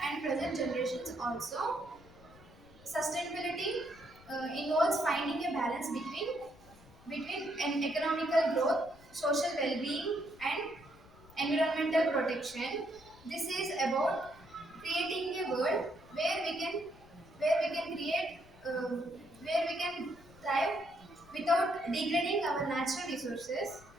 and present generations also. Sustainability involves finding a balance between an economical growth, social well-being, and environmental protection. This is about creating a world where we can create where we can thrive without degrading our natural resources.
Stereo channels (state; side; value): noise; left; rumble, 23 dB below the sound